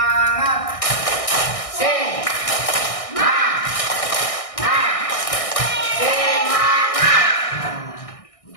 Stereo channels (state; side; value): late; right; 1.6 ms